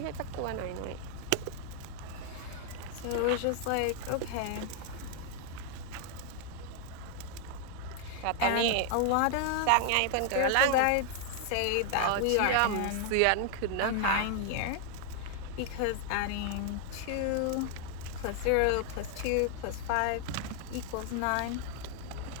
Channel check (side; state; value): both; different; correlation 0.00